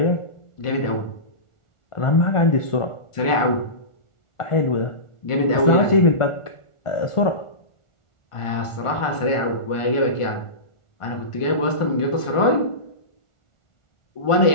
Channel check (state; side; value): late; right; 1.4 ms